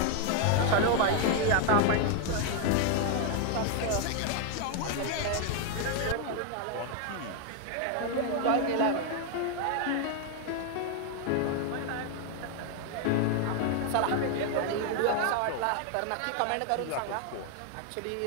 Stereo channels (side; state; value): both; different; correlation 0.00